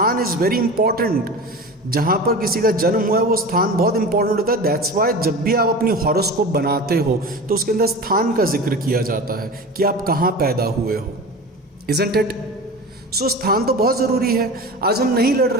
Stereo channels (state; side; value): normal; both; correlation 0.32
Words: is very important. जहाँ पर किसी का जन्म हुआ है वो स्थान बहुत इंपॉर्टेंट होता है. दैट्स वाई जब भी आप अपनी हॉरोस्कोप बनाते हो तो उसके अंदर स्थान का जिक्र किया जाता है कि आप कहाँ पैदा हुए हो. Isn't it? सो स्थान तो बहुत ज़रूरी है. आज हम नहीं लड़